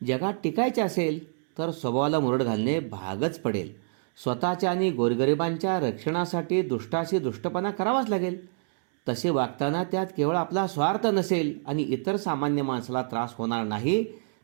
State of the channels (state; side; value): silent; left; 60 dB below the other